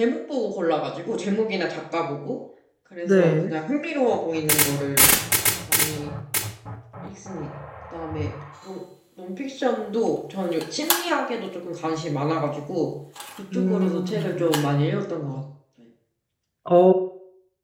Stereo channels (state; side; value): identical; both; correlation 1.00